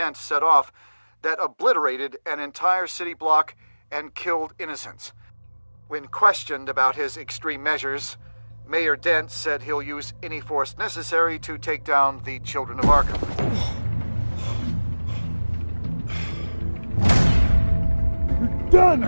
set off that obliterated an entire city block and killed innocents. When questioned about his extreme measures, Mayor Dent said he'll use any force necessary to take down the children of Arkham. You're done,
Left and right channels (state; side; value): inverted; both; correlation -1.00